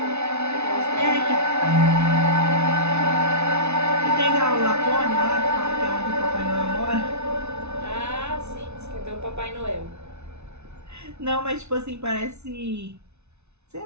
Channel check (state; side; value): late; left; 0.81 ms